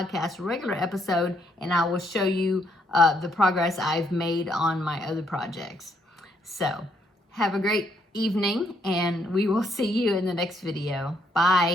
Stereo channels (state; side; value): normal; both; correlation 0.73